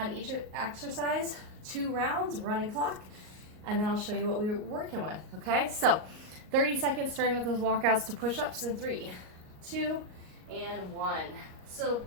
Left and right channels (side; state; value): left; late; 38 ms